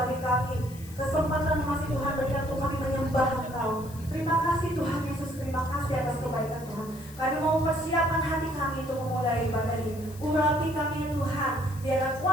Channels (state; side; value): noise; left; hiss, 20 dB below the sound